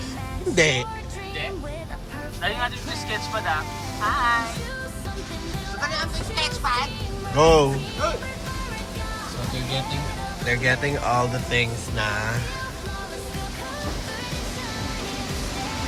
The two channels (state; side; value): identical; both; correlation 1.00